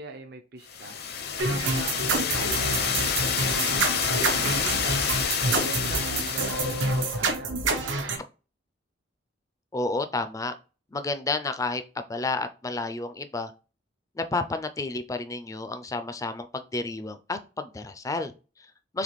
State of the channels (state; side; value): normal; both; correlation 0.20